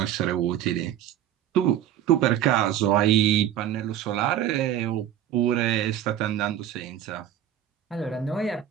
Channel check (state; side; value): quieter; left; 10.9 dB